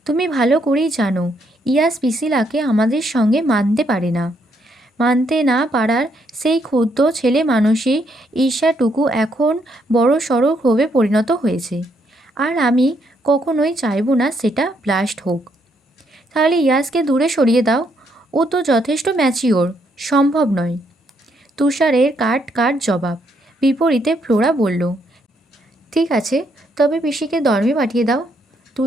তুমি ভালো করেই জানো ইয়াস পিসিলাকে আমাদের সঙ্গে মানতে পারে না। মানতে না পারার সেই ক্ষুদ্র ছেলে মানুষই ঈর্ষাটুকু এখন বড় সড়ো ক্ষোভে পরিণত হয়েছে। আর আমি কখনোই চাইব না সেটা ব্লাস্ট হোক। তাহলে ইয়াসকে দূরে সরিয়ে দাও, ও তো যথেষ্ট ম্যাচিওর। সম্ভব নয়। তুষারের কাট জবাব। বিপরীতে ফ্লোরা বলল, ঠিক আছে, তবে পিসিকে ধর্মে পাঠিয়ে দাও।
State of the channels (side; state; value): both; normal; correlation 0.74